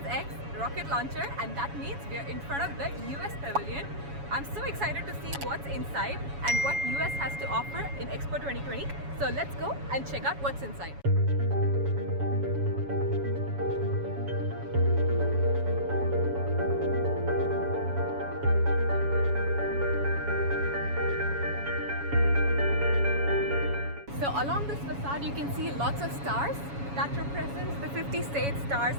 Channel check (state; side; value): late; left; 7.1 ms